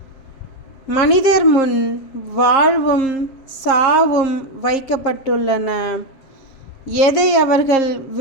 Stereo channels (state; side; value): late; right; 7.4 ms